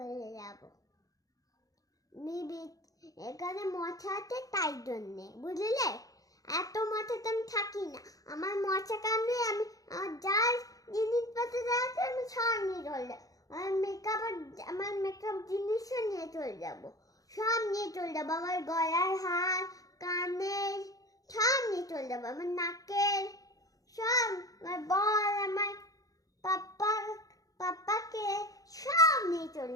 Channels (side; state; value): right; late; 0.17 ms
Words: যাবো। এখানে মশা আছে তাই জন্যে, বুঝলে? এত মশাতে আমি থাকি না। আমার মশা কামড়ে আমি যার জিনিসপত্র আছে আমি সব নিয়ে চলে যাবো। আমার মেকআপ জিনিসও নিয়ে চলে যাবো, সব নিয়ে চলে যাবো। আমার গলার হার, কানের সব নিয়ে চলে যাবো। আমার নাকের সব, আমার বল, আমার পাপ্পাকে সব নিয়ে চলে